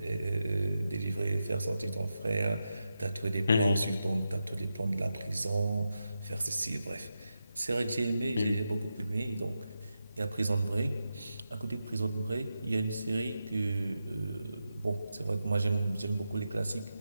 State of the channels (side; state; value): both; inverted; correlation -0.88